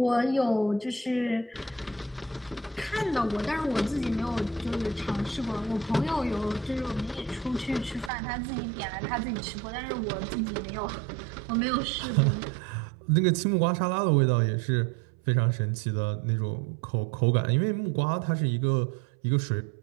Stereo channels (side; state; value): left; drops out; at 8.1 s